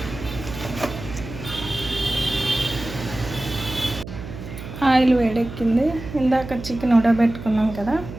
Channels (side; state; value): right; noise; hum, 11 dB below the sound